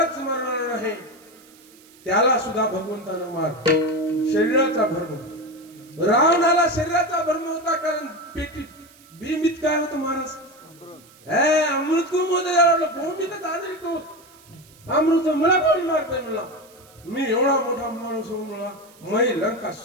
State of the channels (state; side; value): noise; right; hiss, 26 dB below the sound